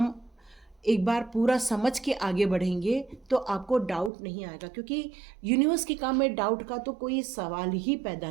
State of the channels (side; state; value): left; drops out; at 4.1 s